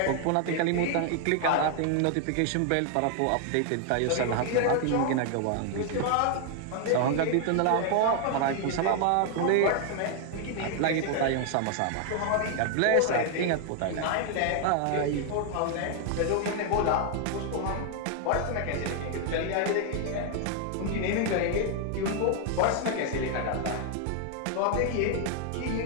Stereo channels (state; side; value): different; both; correlation 0.00